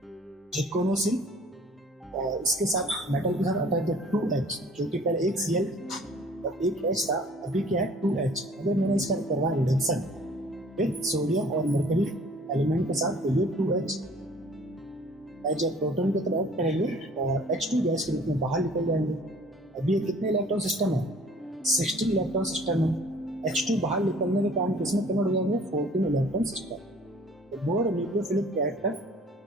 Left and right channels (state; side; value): normal; both; correlation 0.52